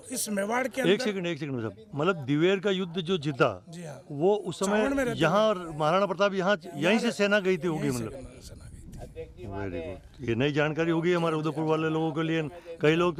इस मेवाड़ के अंदर। एक सेकंड साहब, मतलब दिवेर का युद्ध जो जीता, जी हाँ, वो उस समय यहाँ महाराणा प्रताप यहाँ यहीं से सेना गई थी होगी, मतलब वेरी गुड। ये नई जानकारी होगी हमारे उदयपुर वाले लोगों के लिए। कई लोग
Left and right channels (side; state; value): both; identical; correlation 1.00